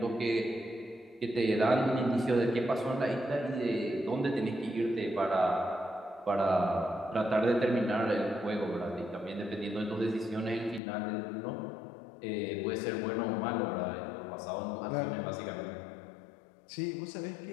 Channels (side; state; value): right; drops out; at 10.8 s